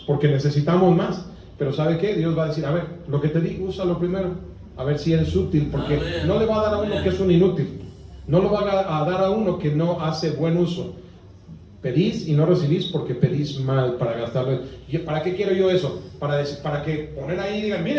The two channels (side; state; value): both; identical; correlation 1.00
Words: porque necesitamos más. Pero ¿sabe qué? Dios va a decir, a ver, lo que te digo, úsalo primero. A ver si eres útil, porque Amén. no le va a dar a uno que es un inútil. No lo va a dar a uno que no hace buen uso. Pedís y no recibís porque pedís mal para gastarlo. ¿Y para qué quiero yo eso? Para que poner ahí y digan,